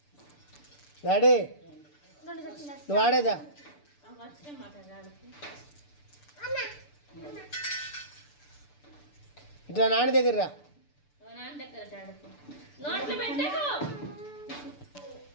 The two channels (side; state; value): right; late; 6.8 ms